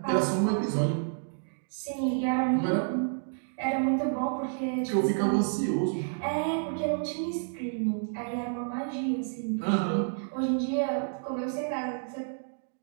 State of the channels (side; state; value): left; silent; digital silence